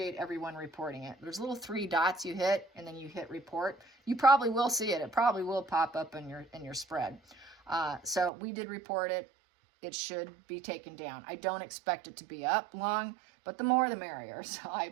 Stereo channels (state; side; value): drops out; left; at 8.3 s